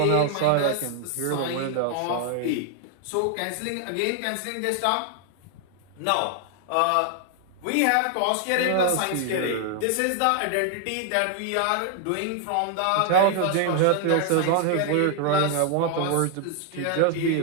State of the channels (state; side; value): different; both; correlation 0.00